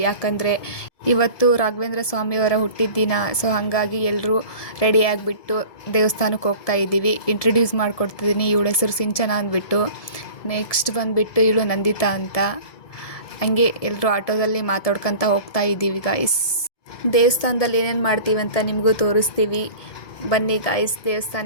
ಯಾಕಂದರೆ ಇವತ್ತು ರಾಘವೇಂದ್ರ ಸ್ವಾಮಿಯವರ ಹುಟ್ಟಿದ ದಿನ. ಸೊ ಹಾಗಾಗಿ ಎಲ್ಲರೂ ರೆಡಿ ಆಗಿಬಿಟ್ಟು ದೇವಸ್ಥಾನಕ್ಕೆ ಹೋಗ್ತಾ ಇದ್ದೀವಿ. ಇಂಟ್ರಡ್ಯೂಸ್ ಮಾಡಿಕೊಡ್ತಿದ್ದೀನಿ. ಇವಳ ಹೆಸರು ಸಿಂಚನ ಅಂದ್ಬಿಟ್ಟು. ನೆಕ್ಸ್ಟ್ ಬಂದುಬಿಟ್ಟು ಇವಳು ನಂದಿತಾ ಅಂತ. ಹಂಗೆ ಎಲ್ಲರೂ ಆಟೋದಲ್ಲಿ ಮಾತಾಡ್ಕೊತ ಹೋಗ್ತಾ ಇದ್ದೀವಿ ಗಾಯ್ಸ್. ದೇವಸ್ಥಾನದಲ್ಲಿ ಏನೇನು ಮಾಡ್ತೀವಿ ಅಂತ ನಿಮಗೂ ತೋರಿಸ್ತೀವಿ. ಬನ್ನಿ ಗಾಯ್ಸ್,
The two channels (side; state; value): right; late; 1.7 ms